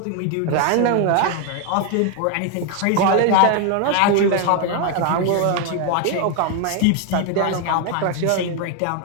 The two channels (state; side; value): different; both; correlation 0.01